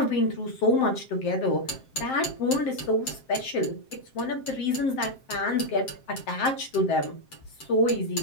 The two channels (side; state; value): right; late; 7.6 ms